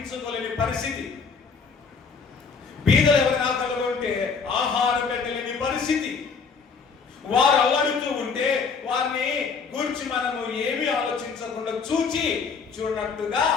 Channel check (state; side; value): quieter; right; 5.4 dB